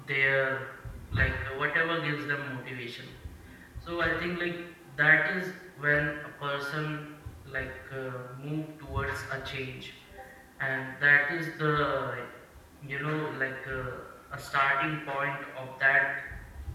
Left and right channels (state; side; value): identical; both; correlation 1.00